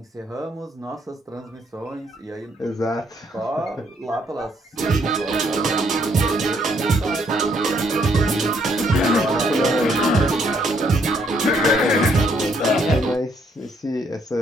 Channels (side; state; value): both; normal; correlation 0.70